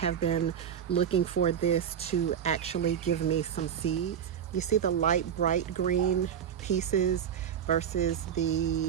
been looking for this to actually give me some seeds. You see the light bright green pieces versus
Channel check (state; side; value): quieter; left; 8.7 dB